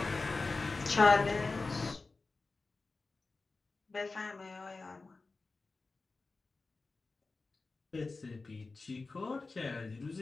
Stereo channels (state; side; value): quieter; right; 3.7 dB